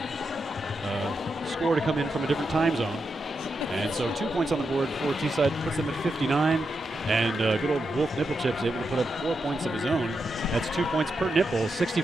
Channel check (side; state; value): both; normal; correlation 0.85